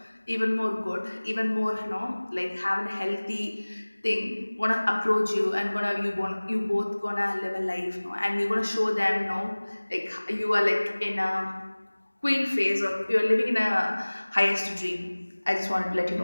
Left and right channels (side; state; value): both; inverted; correlation -1.00